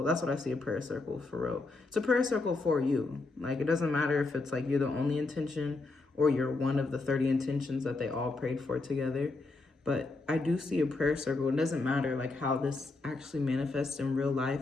That's what I see a prayer circle for real. It's a prayer circle for you. Like, it doesn't matter if it's like you're the only intention or you're one of the 30 intentions that they all prayed for together. But I do see a prayer circle. It doesn't matter like how this actually manifests in real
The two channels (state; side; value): quieter; right; 3.4 dB